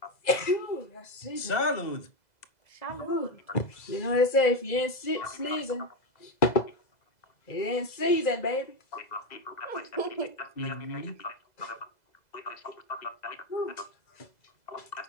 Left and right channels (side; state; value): right; late; 2.0 ms